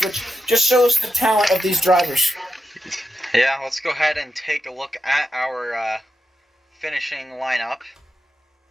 which just shows the talent of these drivers. Yeah, let's go ahead and take a look at our finishing lineup.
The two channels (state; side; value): normal; both; correlation 0.88